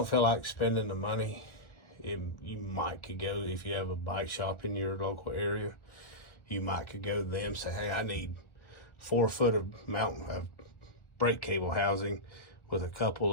feel like spending the money, you might could go, if you have a bike shop in your local area, you might could go to them and say, hey, I need 4 foot of brake cable housing with a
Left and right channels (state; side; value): late; right; 1.5 ms